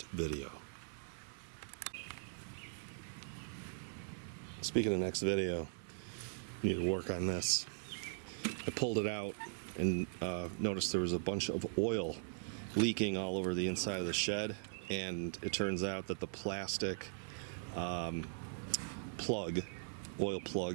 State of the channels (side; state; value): left; silent; 51 dB below the other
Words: video. Speaking of next video, I need to work on this. I pulled it out and noticed there was a bunch of oil leaking all over the inside of the shed, and it turns out that the plastic plug, oil